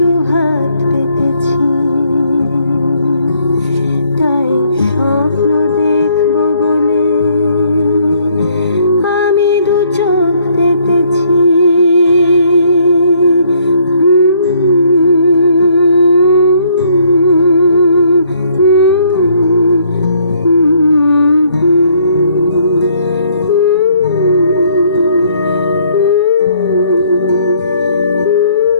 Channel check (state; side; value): inverted; both; correlation -0.65